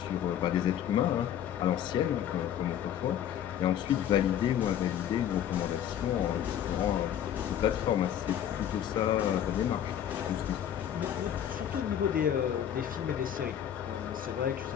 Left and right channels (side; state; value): right; quieter; 10.2 dB